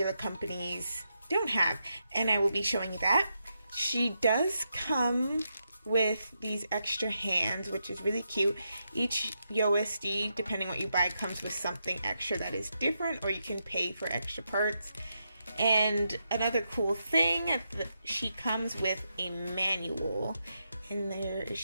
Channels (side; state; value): both; inverted; correlation -0.84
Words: companies don't have, and I will be showing you that. She does come with these extra hands, which is really cute. Each USD, depending what you buy, comes with something extra that is different, or you can pay for extra parts. And another cool thing, she comes with a manual, and there